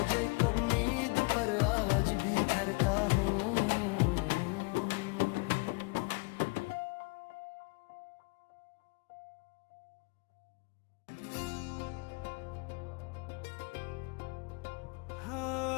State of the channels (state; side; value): quieter; right; 29.2 dB